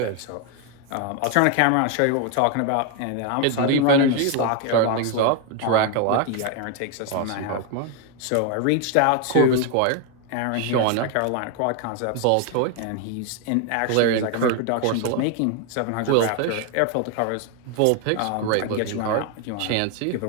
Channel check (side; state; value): both; different; correlation 0.01